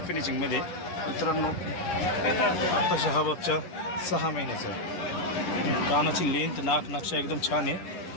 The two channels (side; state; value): right; late; 11 ms